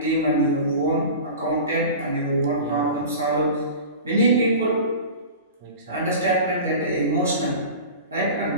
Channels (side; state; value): both; inverted; correlation -0.35